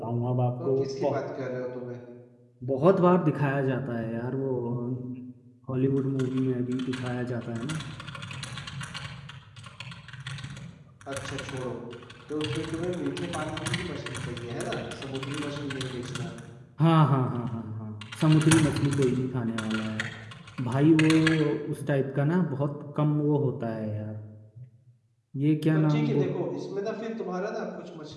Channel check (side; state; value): both; identical; correlation 1.00